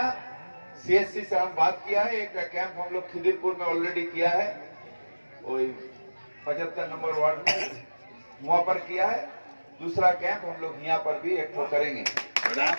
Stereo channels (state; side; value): inverted; both; correlation -1.00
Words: सीएससी से हम बात किया है, एक कैंप हम लोग खिदिरपुर में ऑलरेडी किया है, वही 75 नंबर वार्ड में वहां पर किया है। दूसरा कैंप हम लोग यहाँ पर भी एक तो करेंगे,